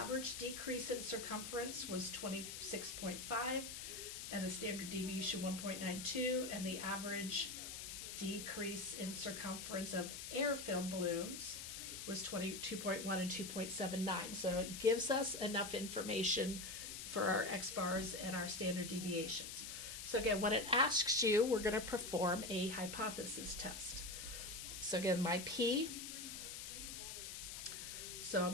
decrease in circumference was 26.5, and the standard deviation 1.92, and the average decrease in circumference of air-filled balloons was 22.1 and 2.79. So it gives us enough information for our X-bars and our standard deviations. So again, when it asks you, we're going to perform a hypothesis test. So again, my P, so I'm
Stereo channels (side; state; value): left; noise; hiss, 7 dB below the sound